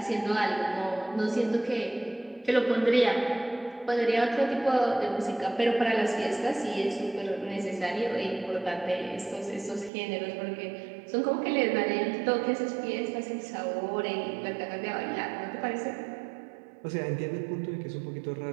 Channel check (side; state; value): left; drops out; at 9.9 s